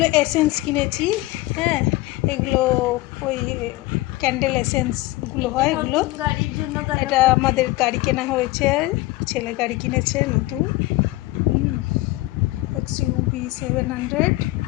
এসেন্স কিনেছি। হ্যাঁ, এগুলো ওই ক্যান্ডেল এসেন্সগুলো হয়, এগুলো গাড়ির জন্য। এটা আমাদের গাড়ি কেনা হয়েছে, ছেলে গাড়ি কিনেছে নতুন, XUV 700।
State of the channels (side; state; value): right; quieter; 19.2 dB